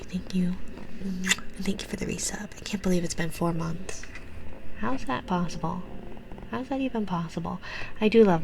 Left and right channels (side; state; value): both; identical; correlation 1.00